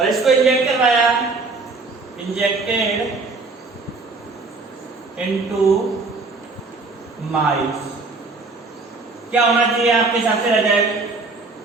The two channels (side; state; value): left; quieter; 3.7 dB